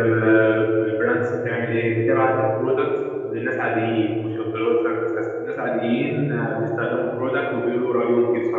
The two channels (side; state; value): both; identical; correlation 1.00